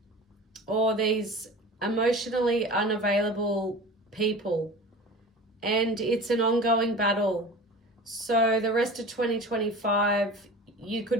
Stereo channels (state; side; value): normal; both; correlation 0.36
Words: or these emotionally unavailable people, and it's an ongoing battle. So the rest of 2025, you